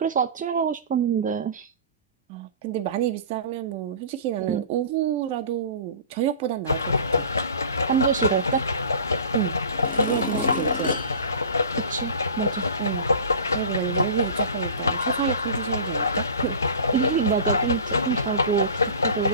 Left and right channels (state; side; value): inverted; both; correlation -0.38